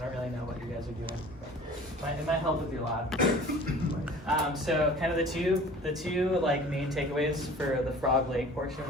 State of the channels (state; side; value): normal; both; correlation 0.45